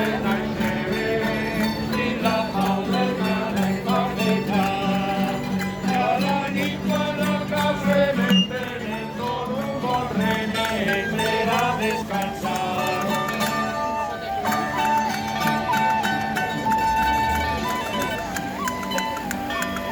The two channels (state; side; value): identical; both; correlation 1.00